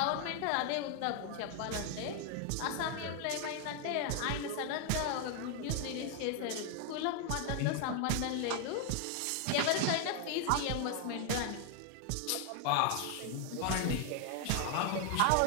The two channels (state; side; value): different; both; correlation 0.01